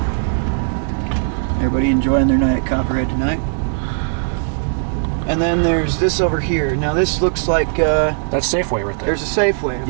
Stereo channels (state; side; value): silent; left; digital silence